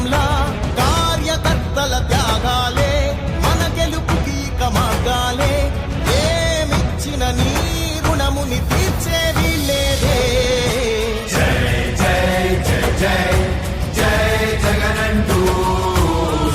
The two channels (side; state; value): both; identical; correlation 1.00